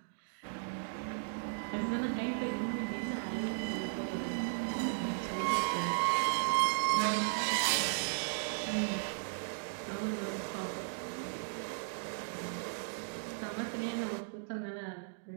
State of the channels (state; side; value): silent; left; digital silence